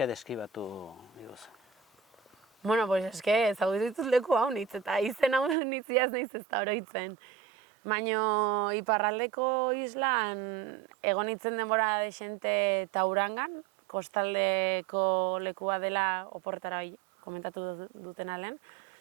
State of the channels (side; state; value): left; drops out; at 5.6 s